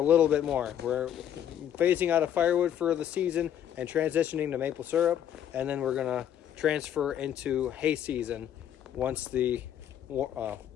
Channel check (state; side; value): quieter; right; 10.1 dB